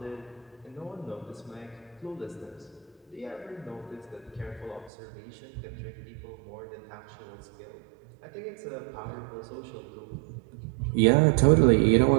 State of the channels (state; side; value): drops out; left; at 4.9 s